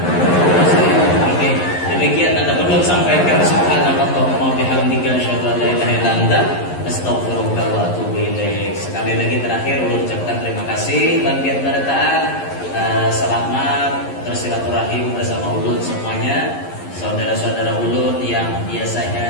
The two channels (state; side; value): late; right; 11 ms